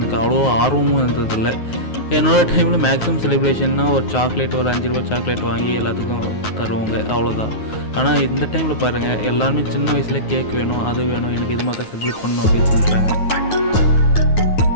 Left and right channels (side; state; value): right; late; 9.4 ms